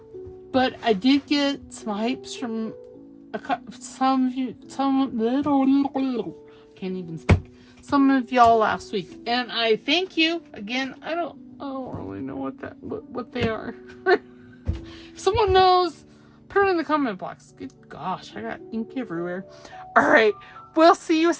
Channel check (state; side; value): identical; both; correlation 1.00